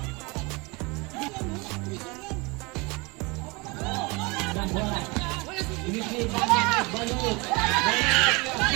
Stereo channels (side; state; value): left; quieter; 26.9 dB